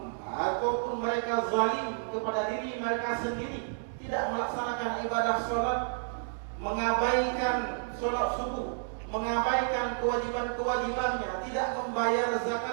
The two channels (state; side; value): silent; left; digital silence